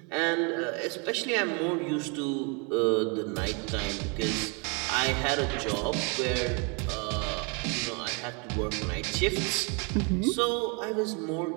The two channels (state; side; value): quieter; left; 33.9 dB